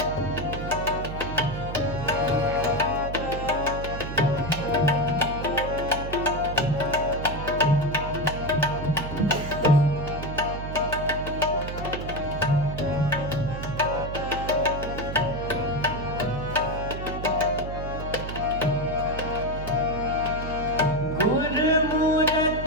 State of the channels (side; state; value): right; noise; hum, 7 dB below the sound